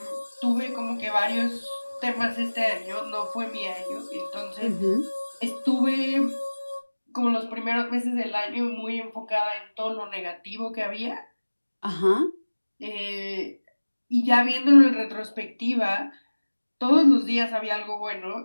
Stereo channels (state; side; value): inverted; both; correlation -1.00